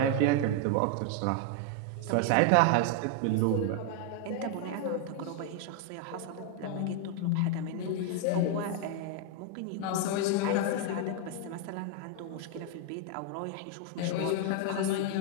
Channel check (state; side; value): different; both; correlation 0.00